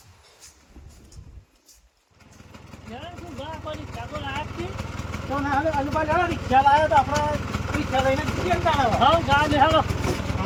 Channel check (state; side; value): identical; both; correlation 1.00